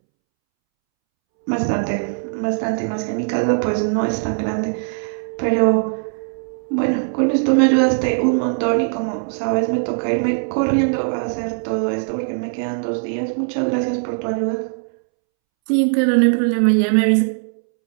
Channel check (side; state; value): left; silent; 66 dB below the other